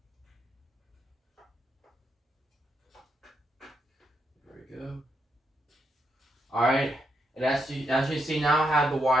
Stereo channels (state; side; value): normal; both; correlation 0.80